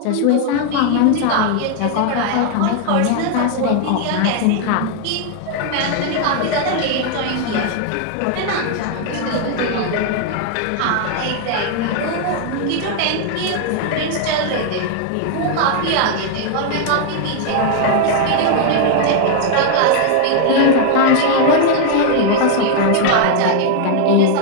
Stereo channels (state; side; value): different; both; correlation 0.00